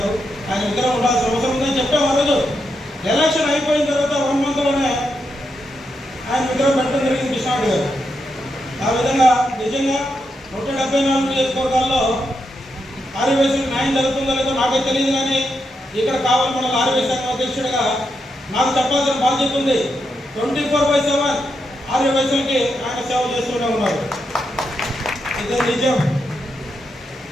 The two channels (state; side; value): normal; both; correlation 0.83